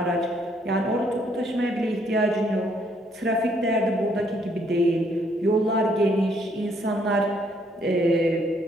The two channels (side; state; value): both; normal; correlation 0.68